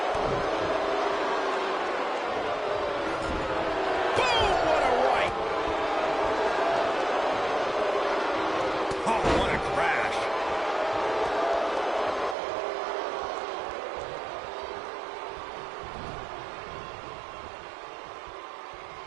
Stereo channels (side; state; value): left; drops out; at 12.4 s